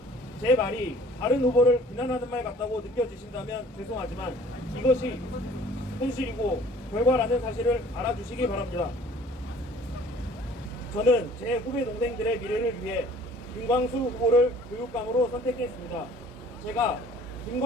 제 말이 다른 후보를 비난하는 말 같다고 느껴지신다면 죄송하지만 이것이 현실이고 결과라는 사실을 알아주시기 바랍니다. 저는 제 후배 동생들의 미래를 위해 김광수 후보를 교육감으로 선택했습니다. 제가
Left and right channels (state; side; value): normal; both; correlation 0.52